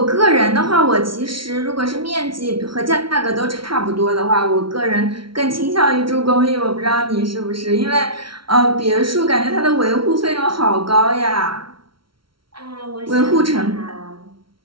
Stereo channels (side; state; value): left; late; 0.74 ms